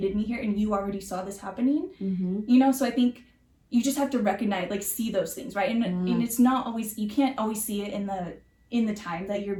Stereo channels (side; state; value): both; identical; correlation 1.00